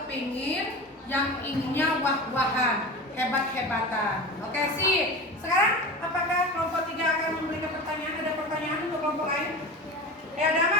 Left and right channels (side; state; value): both; normal; correlation 0.31